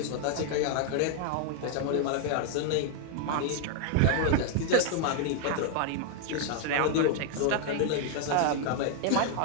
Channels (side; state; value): both; different; correlation 0.00